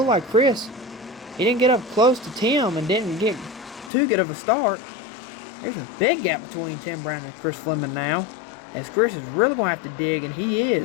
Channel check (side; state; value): right; drops out; at 3.9 s